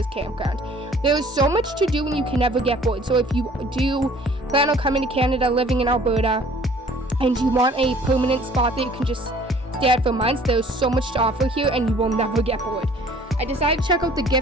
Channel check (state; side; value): normal; both; correlation 0.53